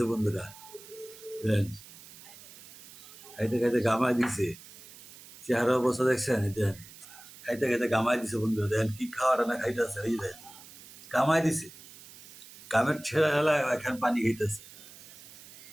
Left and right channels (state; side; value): noise; right; hiss, 19 dB below the sound